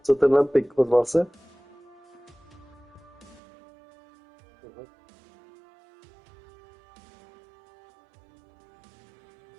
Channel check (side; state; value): left; drops out; at 3.4 s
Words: Co tenhle pik ozval se? Aha.